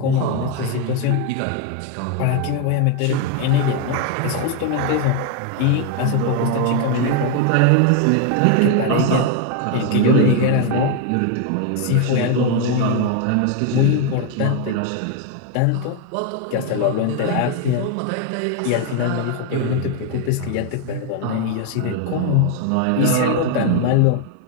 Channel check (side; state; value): both; different; correlation 0.01